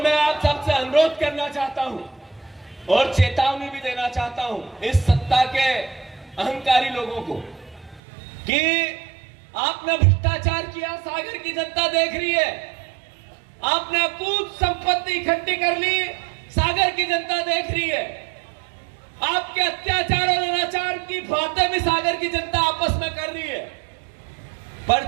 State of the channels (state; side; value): drops out; left; at 8.0 s